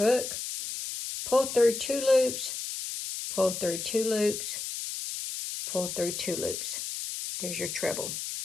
pull through 2 loops, pull through 2 loops, pull through 2 loops. There's your treble.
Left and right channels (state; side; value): noise; left; hiss, 5 dB below the sound